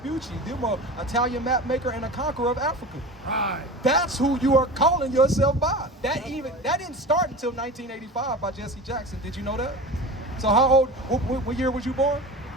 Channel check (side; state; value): both; normal; correlation 0.32